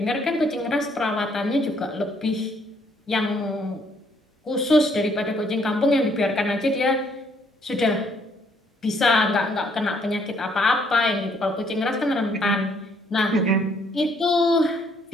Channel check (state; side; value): normal; both; correlation 0.67